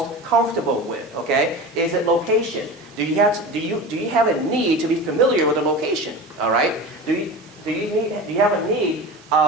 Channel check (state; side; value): normal; both; correlation 0.31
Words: comfortable with, okay? Is it location? Do you have a need to be familiar with the location, all right? Do you have a need